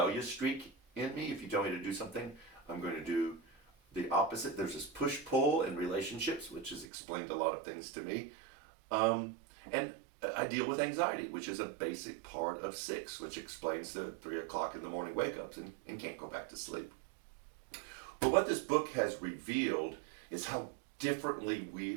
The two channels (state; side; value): drops out; left; at 6.9 s